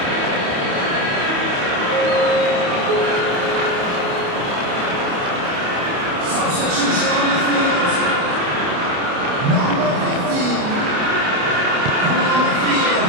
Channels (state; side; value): late; left; 28 ms